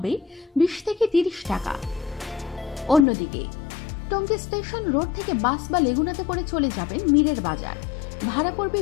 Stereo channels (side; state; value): right; drops out; at 3.1 s